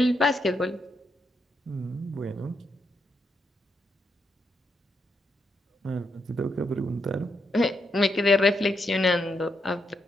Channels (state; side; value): normal; both; correlation 0.80